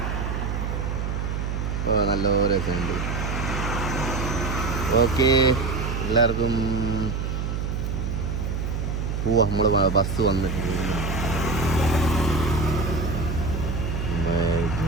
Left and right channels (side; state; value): right; noise; hum, 2 dB below the sound